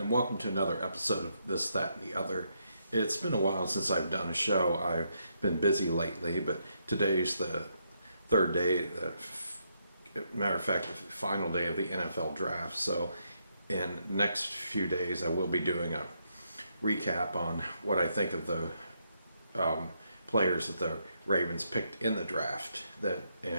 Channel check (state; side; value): inverted; both; correlation -0.78